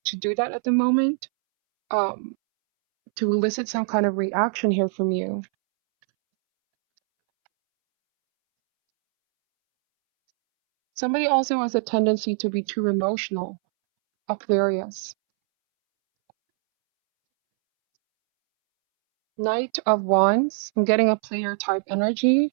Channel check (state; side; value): silent; left; 63 dB below the other